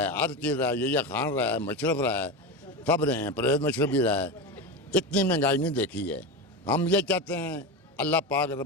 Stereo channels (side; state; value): both; normal; correlation 0.19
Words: हर चीज़ रहा है, यहिया खान रहा है, मशरफ रहा है, सब रहे हैं, परवेज़ मशरफ भी रहा है। इतनी महंगाई नहीं देखी है। हम ये चाहते हैं अल्लाह पाक